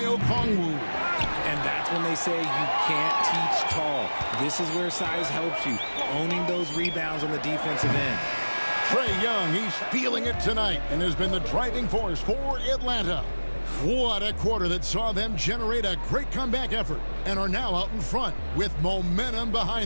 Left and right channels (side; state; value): both; inverted; correlation -1.00